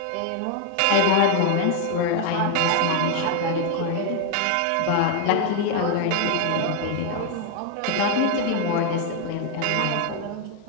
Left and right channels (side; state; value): both; different; correlation 0.01